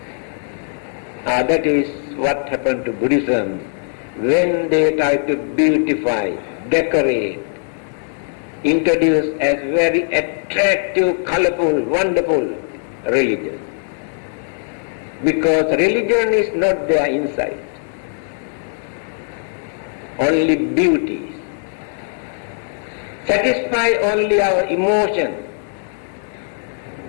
That is what happened to Buddhism when they try to beautify, decorate, introduce as very attractive, colorful, wonderful religion. Because religion is not their insight, only beauty. Satisfy only our emotion.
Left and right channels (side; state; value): right; silent; 62 dB below the other